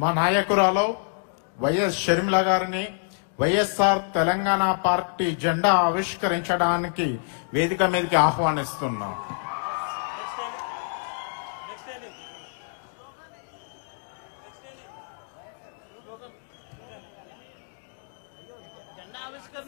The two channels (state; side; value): silent; right; digital silence